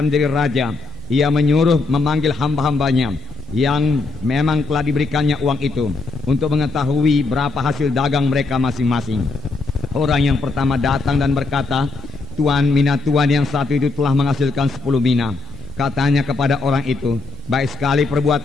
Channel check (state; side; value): quieter; right; 3.9 dB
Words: menjadi raja, ia menyuruh memanggil hamba-hambanya yang memang telah diberikannya uang itu untuk mengetahui berapa hasil dagang mereka masing-masing. Orang yang pertama datang dan berkata, Tuan, mina Tuan yang satu itu telah menghasilkan 10 mina. Katanya kepada orang itu, baik sekali